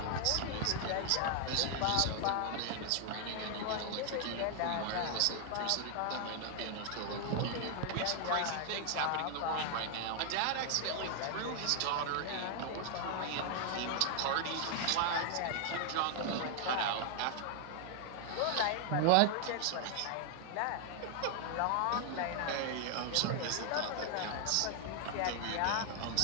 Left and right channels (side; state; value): both; different; correlation 0.00